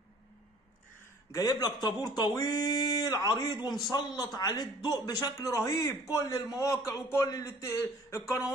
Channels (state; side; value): normal; both; correlation 0.53